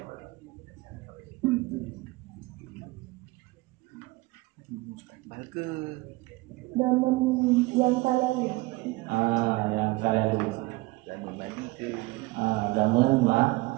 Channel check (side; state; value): left; quieter; 22.1 dB